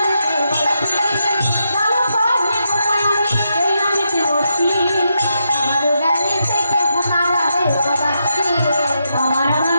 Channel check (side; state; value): both; inverted; correlation -0.83